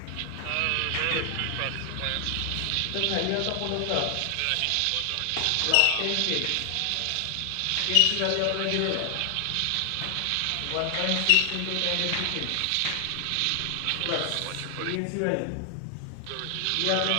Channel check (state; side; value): different; both; correlation 0.00